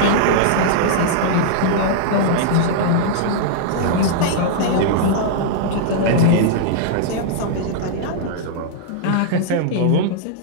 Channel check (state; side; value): different; both; correlation -0.01